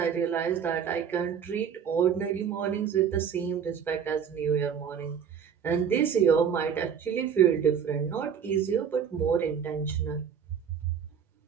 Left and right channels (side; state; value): left; quieter; 7.6 dB